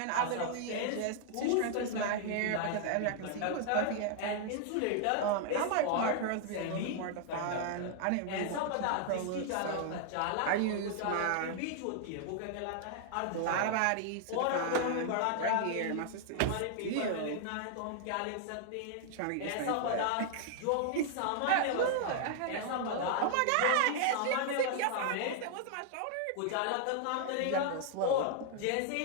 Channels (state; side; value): different; both; correlation 0.00